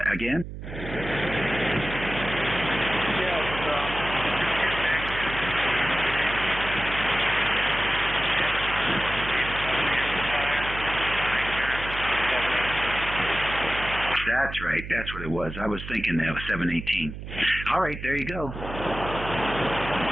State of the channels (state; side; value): noise; right; hum, 10 dB below the sound